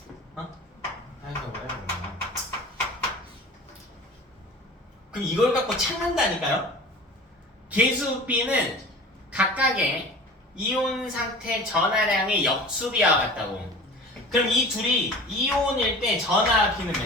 어? 아이고 뭐야. 그럼 이걸 갖고 찾는다니까요? 계수 B는 각각의 이온 상태 전하량의 역수비와 같다고. 그럼 이 둘이 이온일 때 전하 B는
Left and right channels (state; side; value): normal; both; correlation 0.39